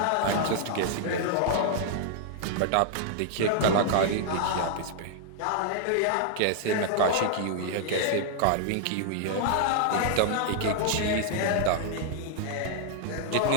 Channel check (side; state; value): both; different; correlation 0.00